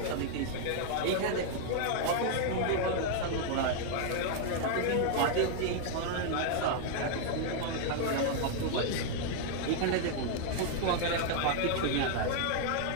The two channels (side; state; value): both; different; correlation 0.00